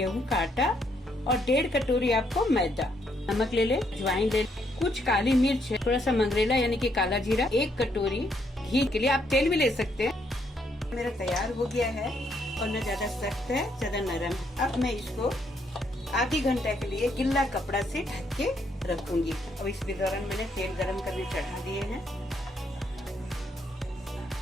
का आटा और 1.5 कटोरी आपको मैदा। नमक ले ले, अजवाइन ले, कुछ काली मिर्च, थोड़ा सा मंगरेला यानी कि काला जीरा, 1 कटोरी घी, के लिए आप तेल भी ले सकते हैं। मेरा तैयार हो गया है और न ज्यादा सख्त है ज्यादा नरम। अब मैं इसको आधी घंटा के लिए गिल्ला कपड़ा से ढक के रखूंगी। अब इस दौरान मैंने तेल गरम करने चढ़ा दिए हैं।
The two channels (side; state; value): both; normal; correlation 0.73